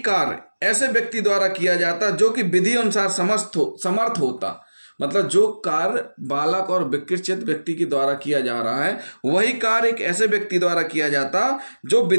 कार्य ऐसे व्यक्ति द्वारा किया जाता जो कि विधि अनुसार समर्थ होता, मतलब जो कार्य बालक और विकृत व्यक्ति के द्वारा किया जा रहा है वही कार्य एक ऐसे व्यक्ति द्वारा किया जाता जो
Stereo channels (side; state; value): both; inverted; correlation -1.00